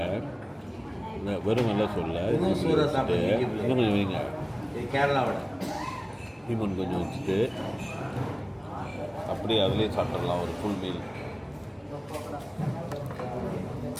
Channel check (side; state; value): both; identical; correlation 1.00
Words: வெறும் வெள்ளை சோளில் இன்னும் கொஞ்சம் வைங்க. கேரளாவோட லீமன் கொஞ்சம் வச்சுட்டு அப்படியே அதிலே சாப்பிட்றலாம் ஒரு ஃபுல் மீல்.